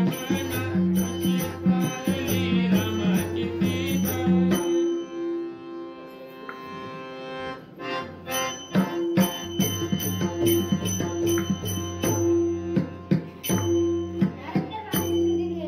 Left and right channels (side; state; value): both; identical; correlation 1.00